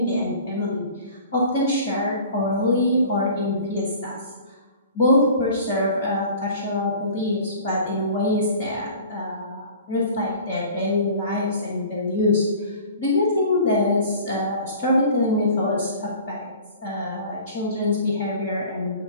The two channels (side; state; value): both; inverted; correlation -0.44